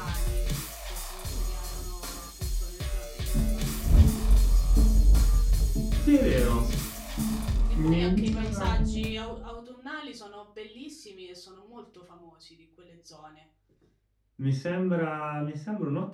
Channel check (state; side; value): identical; both; correlation 1.00